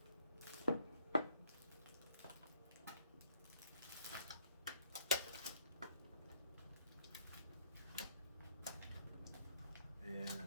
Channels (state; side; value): inverted; both; correlation -0.66